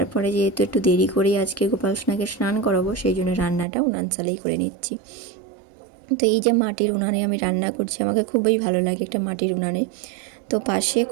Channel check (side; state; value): left; drops out; at 3.7 s